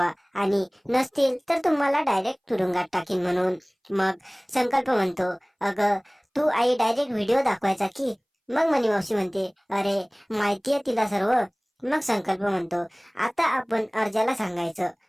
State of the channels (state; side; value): identical; both; correlation 1.00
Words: आणि नसतील तर तुम्हाला डायरेक्ट तुरुंगात टाकीन म्हणून। मग संकल्प म्हणतो, अगं तू आई डायरेक्ट व्हिडिओ दाखवायचा की? मग मनी मावशी म्हणते, अरे माहितीये तिला सर्व। मग संकल्प म्हणतो, आता आपण अर्जाला सांगायचं